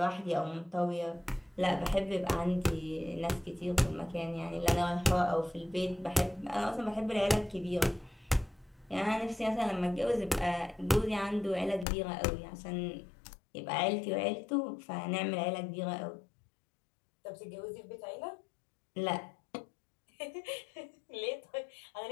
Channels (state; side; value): drops out; right; at 11.9 s